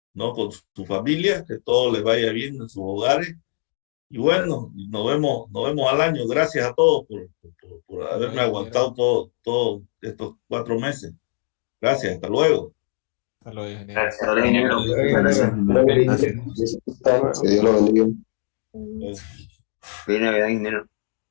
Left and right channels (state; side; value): silent; right; digital silence